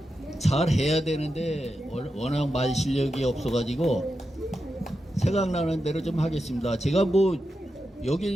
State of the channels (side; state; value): both; normal; correlation 0.89